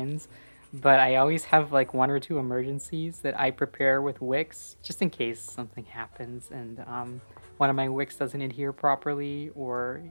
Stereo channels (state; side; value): inverted; both; correlation -1.00